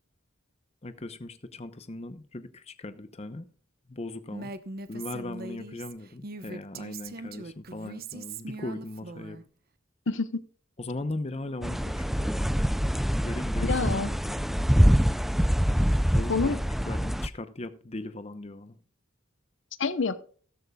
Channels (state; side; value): normal; both; correlation 0.86